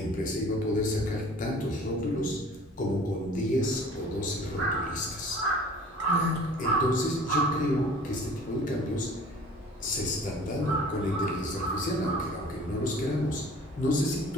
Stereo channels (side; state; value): both; normal; correlation 0.47